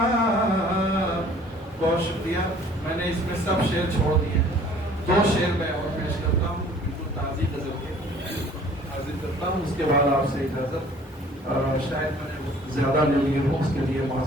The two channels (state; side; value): normal; both; correlation 0.53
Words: बहुत शुक्रिया। मैंने इसमें सब शेर छोड़ दिए, 2 शेर मैं और पेश करता हूँ, बिल्कुल ताज़ी गज़ल के हाजिर करता हूँ, उसके बाद आपसे इजाज़त। शायद मैंने ज़्यादा ले ली हूँ, उसके लिए